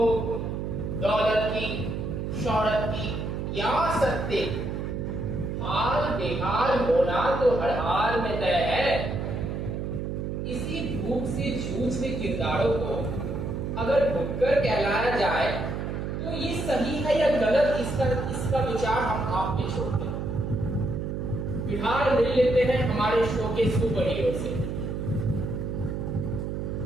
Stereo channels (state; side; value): noise; right; hum, 3 dB below the sound